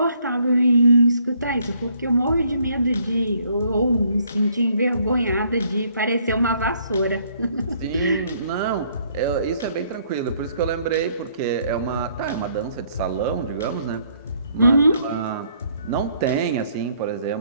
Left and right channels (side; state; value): both; inverted; correlation -0.66